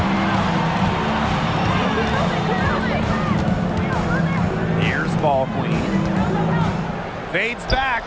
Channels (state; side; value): identical; both; correlation 1.00